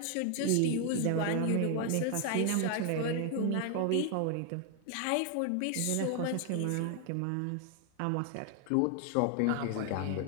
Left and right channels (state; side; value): different; both; correlation 0.00